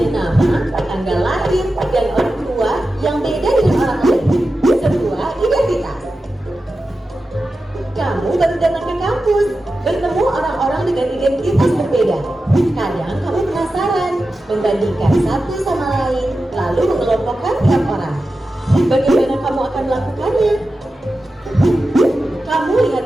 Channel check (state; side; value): normal; both; correlation 0.92